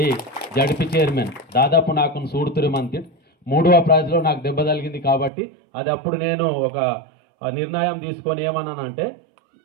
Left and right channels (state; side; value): drops out; left; at 5.3 s